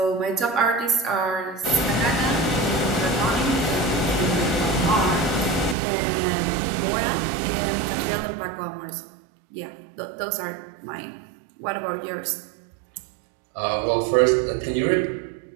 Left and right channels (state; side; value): drops out; left; at 5.8 s